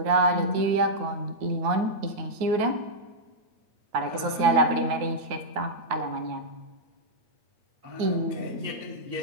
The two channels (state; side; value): late; left; 9.5 ms